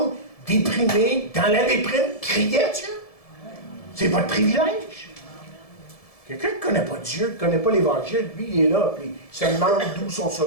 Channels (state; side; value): late; right; 1.7 ms